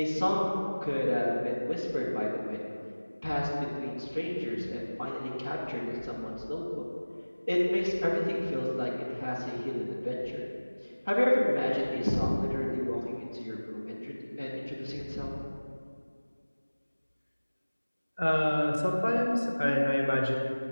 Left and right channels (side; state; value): both; inverted; correlation -1.00